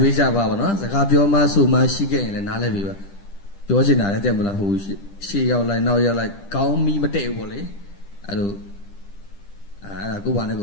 Bavana, the Capioma, so much she gained and Nale Viva. Georgina, I tell you who she out like now you're like, call me Mateo. I do. I go one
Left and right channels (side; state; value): right; late; 10 ms